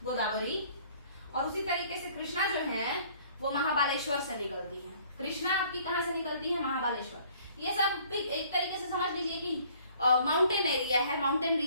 गोदावरी, और उसी तरीके से कृष्णा जो है वो महाबालेश्वर से निकलती है। कृष्णा आपकी कहां से निकलती है? महाबालेश्वर। ये सब एक तरीके से समझ लीजिए कि माउंटेन एरिया है, माउंटेन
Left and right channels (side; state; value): both; inverted; correlation -0.57